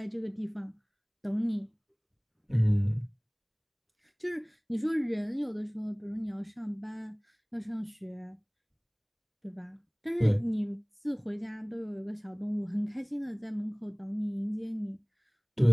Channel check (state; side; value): identical; both; correlation 1.00